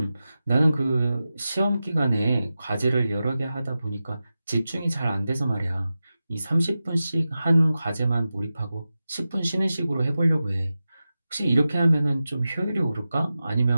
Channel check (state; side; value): inverted; both; correlation -0.93